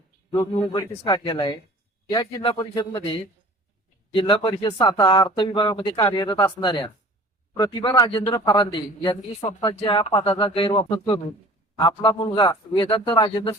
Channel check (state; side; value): normal; both; correlation 0.45